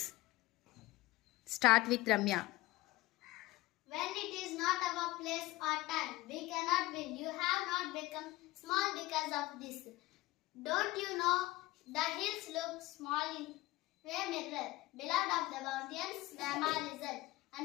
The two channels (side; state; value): right; quieter; 18.9 dB